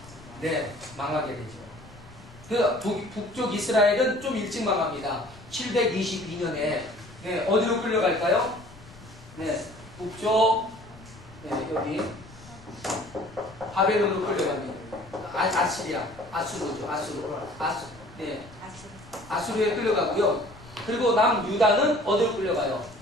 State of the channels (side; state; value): left; noise; rumble, 21 dB below the sound